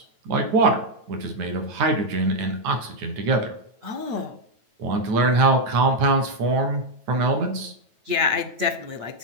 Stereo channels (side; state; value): left; late; 9.2 ms